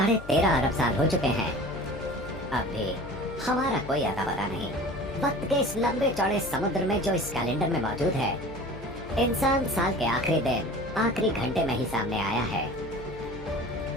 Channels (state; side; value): noise; left; hum, 15 dB below the sound